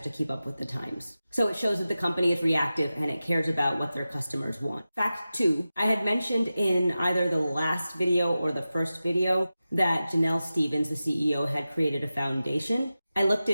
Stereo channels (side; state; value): both; inverted; correlation -0.94